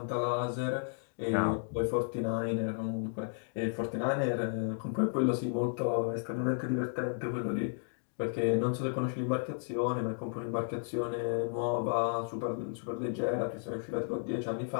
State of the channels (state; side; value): silent; right; digital silence